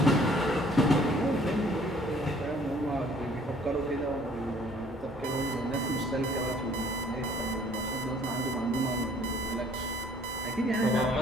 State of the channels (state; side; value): normal; both; correlation 0.58